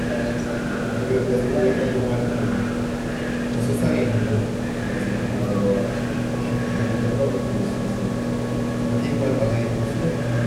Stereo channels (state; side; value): identical; both; correlation 1.00